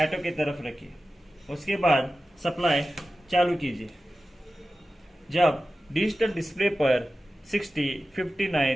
की तरफ रखिए। उसके बाद सप्लाई चालू कीजिए। जब डिजिटल डिस्प्ले पर 60,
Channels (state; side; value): normal; both; correlation 0.94